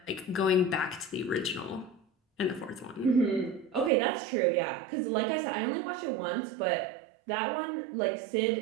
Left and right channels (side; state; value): left; drops out; at 3.9 s